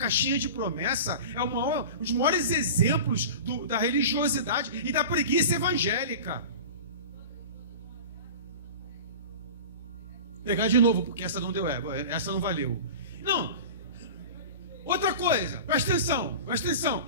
de promessa é um dos maiores exemplos da religiosidade e da preguiça evangélica. Pegar de novo, porque essa não deu, essa não valeu. Não. Outra coisa, presta atenção.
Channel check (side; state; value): both; inverted; correlation -0.34